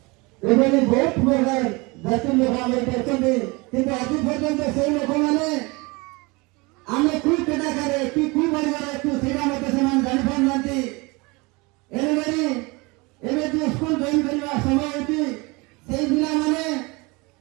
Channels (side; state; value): left; quieter; 25.8 dB